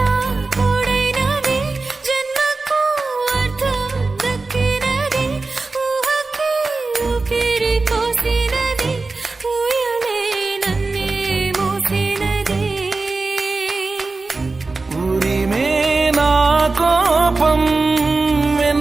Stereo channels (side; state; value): left; quieter; 3.7 dB